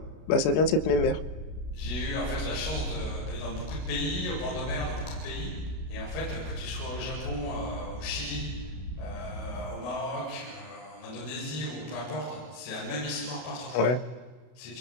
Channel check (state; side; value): late; right; 32 ms